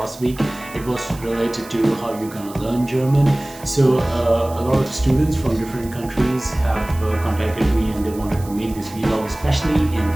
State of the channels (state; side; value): noise; right; hiss, 19 dB below the sound